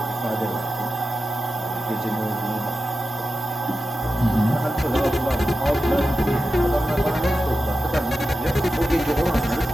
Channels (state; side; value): normal; both; correlation 0.91